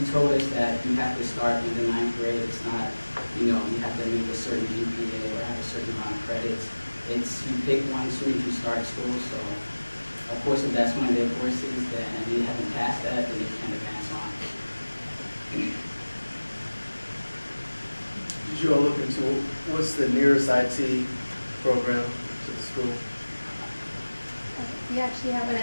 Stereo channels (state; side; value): inverted; both; correlation -1.00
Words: told us that you have to start in the 9th grade. It's not, you have to make a certain GPA or have a certain amount of credits. It's you pick one as soon as you start school. So, of course, if that's one of their courses, then and they haven't passed that, then they can't advance on. Did you all look into what's the nearest IT program to the school? We actually have one